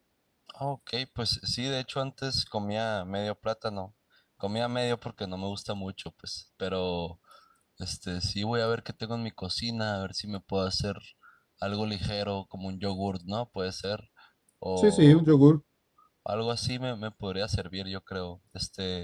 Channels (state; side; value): identical; both; correlation 1.00